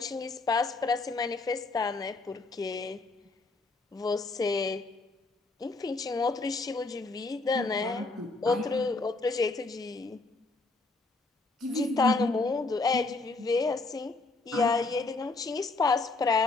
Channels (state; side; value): quieter; right; 3.5 dB